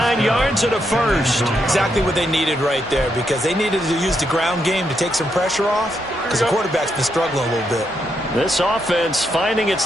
yards and a first. Exactly what they needed right there because they needed to use the ground game to take some pressure off because the quarterback's been struggling a little bit. This offense finding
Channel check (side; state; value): both; normal; correlation 0.80